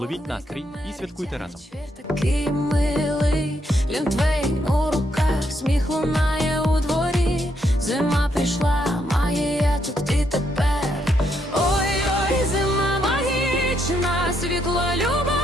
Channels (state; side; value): normal; both; correlation 0.76